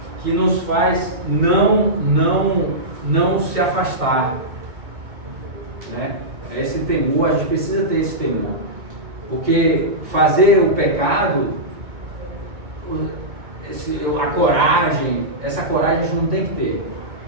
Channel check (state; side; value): late; left; 2.2 ms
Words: nos faz não se afastar, né? Esse temor, a gente precisa ter esse temor, porque fazer o pecado, essa coragem a gente não tem que ter